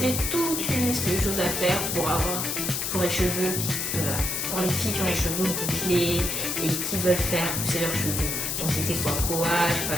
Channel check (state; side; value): noise; left; hiss, 1 dB below the sound